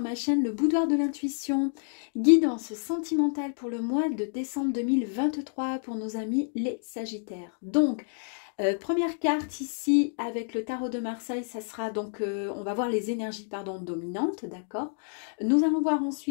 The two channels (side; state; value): right; silent; digital silence